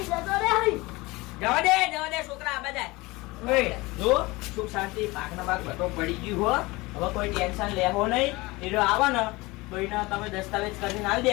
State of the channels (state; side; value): quieter; right; 22.4 dB